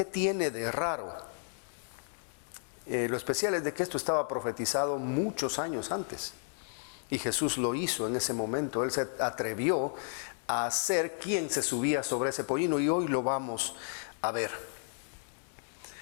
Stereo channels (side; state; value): right; silent; 56 dB below the other